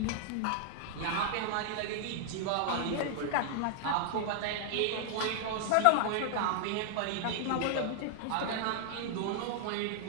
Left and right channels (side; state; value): both; different; correlation -0.01